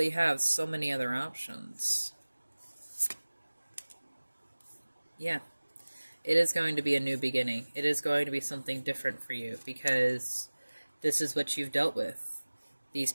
have so many other options? Yeah, it is going to be a new beginning. It is going to be something different for you, because this is what you've dealt with. These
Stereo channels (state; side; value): inverted; both; correlation -1.00